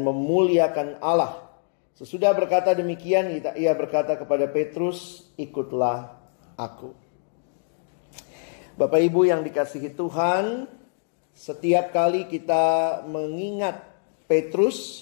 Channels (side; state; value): right; silent; digital silence